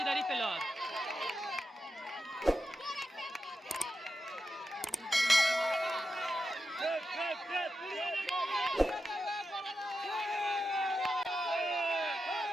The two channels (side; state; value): both; normal; correlation 0.89